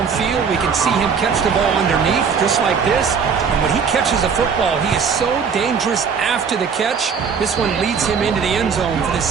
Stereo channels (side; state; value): left; quieter; 6.2 dB